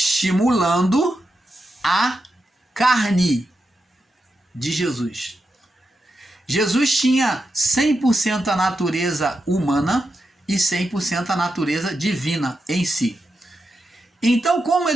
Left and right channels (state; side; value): normal; both; correlation 0.87